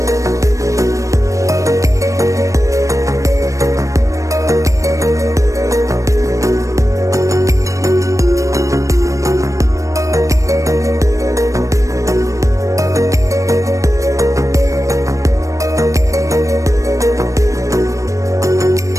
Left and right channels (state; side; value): late; left; 0.16 ms